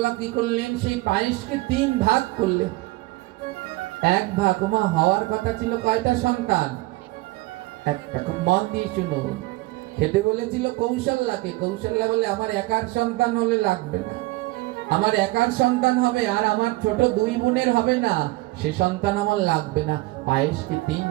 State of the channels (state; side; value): quieter; left; 20.5 dB